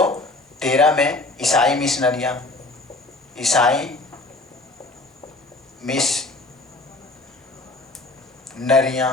में ईसाई मिशनरियां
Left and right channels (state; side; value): quieter; right; 3.0 dB